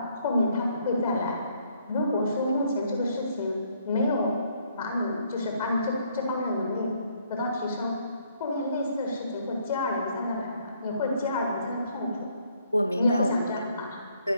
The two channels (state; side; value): inverted; both; correlation -0.68